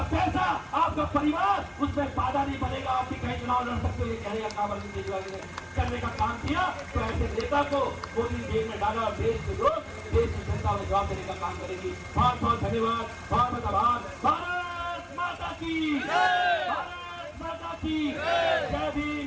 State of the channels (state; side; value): identical; both; correlation 1.00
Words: पैसा, आपका परिवार, उसमें बाधा नहीं बनेगा। आपकी कहीं चुनाव लड़ सकते हो। ये कहने का काम अरविंद केजरीवाल ने करने का काम किया। तो ऐसे नेता को मोदी जेल में डाला और देश के लोग, देश की जनता में जवाब देने का काम करेगी। बहुत बहुत धन्यवाद, बहुत बहुत आभार। भारत माता की, भारत माता की जय भीम,